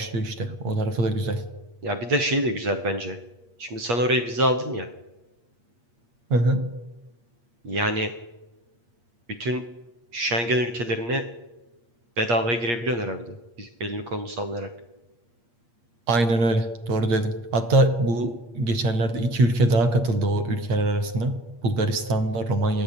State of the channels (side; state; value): left; late; 8.5 ms